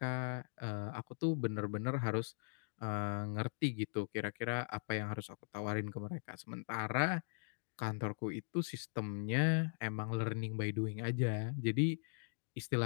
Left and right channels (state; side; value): silent; right; digital silence